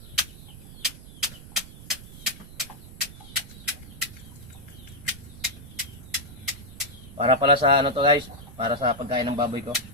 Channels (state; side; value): noise; right; rumble, 16 dB below the sound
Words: Para pala sa ano to guys, para sa pagkain ng baboy ko.